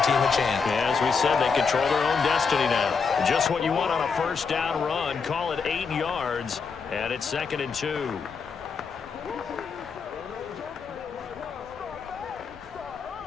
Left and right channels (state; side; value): quieter; right; 5.4 dB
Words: team a chance. Yeah, as we said, they control their own destiny now. Just what you want on a first down run. Call it 8 yards, and it's 2nd and 2.